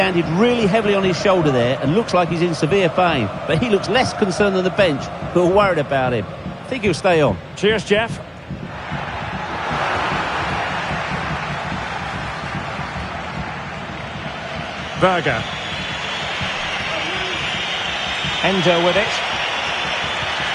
really heavily on his shoulder there and looks like he's in severe pain. But he looks less concerned than the bench, who are worried about him. I think he'll stay on. Cheers, Jeff. Berger. Endo with it.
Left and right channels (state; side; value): identical; both; correlation 1.00